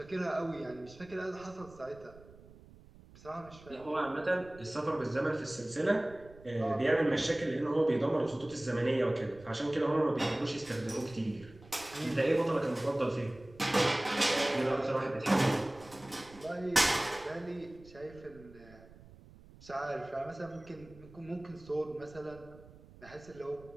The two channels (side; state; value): right; noise; rumble, 21 dB below the sound